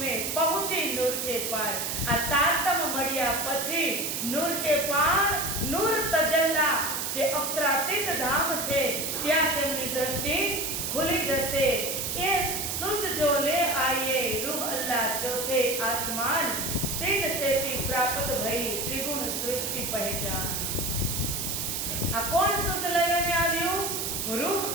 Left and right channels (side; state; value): right; noise; hiss, 2 dB below the sound